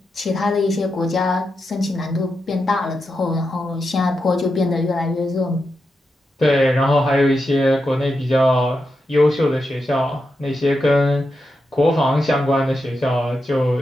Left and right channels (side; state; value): both; normal; correlation 0.87